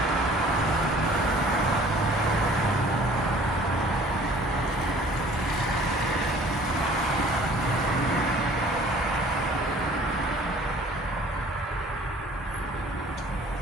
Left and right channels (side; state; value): both; normal; correlation 0.51